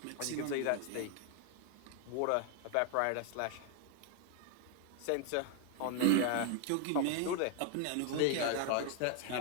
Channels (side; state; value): both; different; correlation 0.00